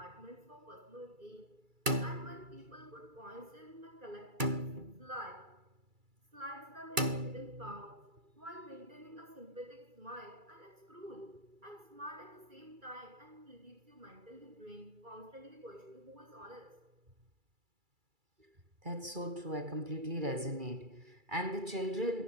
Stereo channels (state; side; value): late; left; 2.3 ms